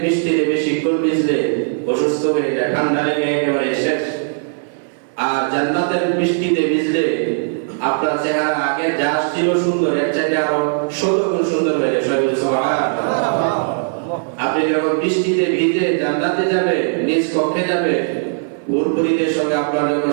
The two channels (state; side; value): silent; left; 67 dB below the other